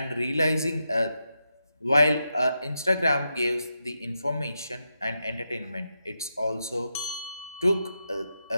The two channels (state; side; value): inverted; both; correlation -0.86